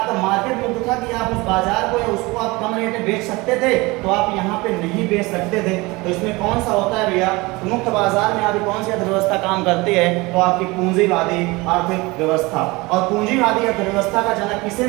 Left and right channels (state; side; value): quieter; left; 23.2 dB